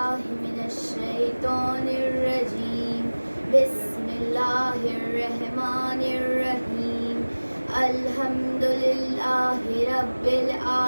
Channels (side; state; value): both; inverted; correlation -1.00